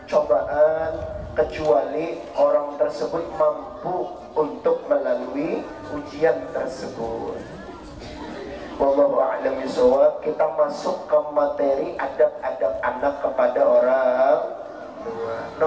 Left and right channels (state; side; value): identical; both; correlation 1.00